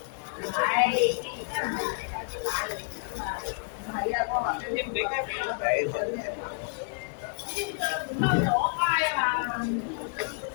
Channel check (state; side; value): silent; right; digital silence